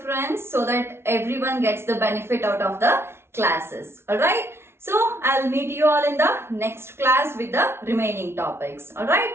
so that everyone gets the benefit out of the classes. Alright. So I'll meet you all in the next class with the remaining topics. Alright.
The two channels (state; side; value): late; left; 0.12 ms